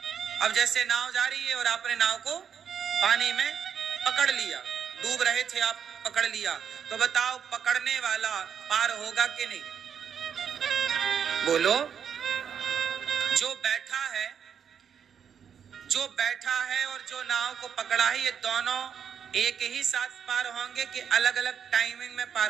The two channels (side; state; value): left; quieter; 7.8 dB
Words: अब जैसे नाव जा रही है और आपने नाव को पानी में पकड़ लिया, डूब रहे थे आप, पकड़ लिया, तो बताओ पकड़ने वाला पार होगा कि नहीं? बोलो। जो बैठा है और जो नाव को पकड़ा है, ये दोनों एक ही साथ पार होंगे कि अलग अलग टाइमिंग में पार